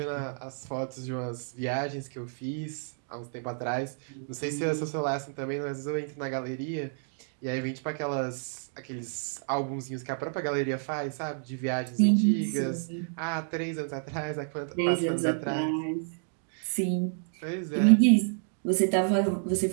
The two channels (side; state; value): left; silent; digital silence